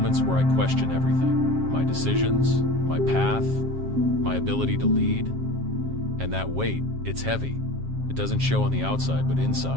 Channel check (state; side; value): late; left; 7.4 ms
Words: where I question everything. My decisions, my path, my ability to lead. And that weight, it's heavy. It doesn't show on the outside, but